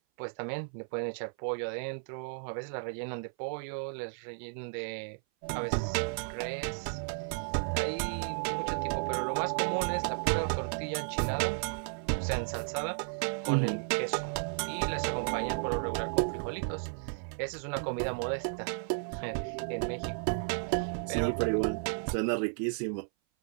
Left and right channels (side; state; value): left; silent; 55 dB below the other